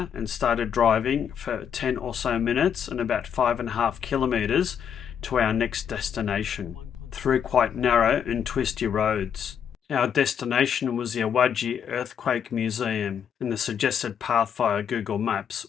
and started driving for 10 or so minutes and about 5.5 kilometres to our next destination, through quite narrow and twisty roads. Our destination was the Awaji Earthquake Museum, and the suggested path via Google Maps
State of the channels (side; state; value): right; quieter; 8.1 dB